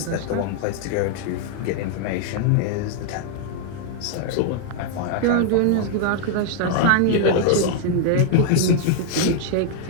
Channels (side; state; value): both; different; correlation 0.00